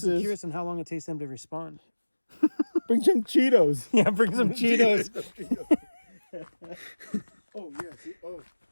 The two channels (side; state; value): both; inverted; correlation -1.00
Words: curious on how long it takes them to respond. bring some Cheetos. Yeah, bring some Cheetos. Oh yeah, see,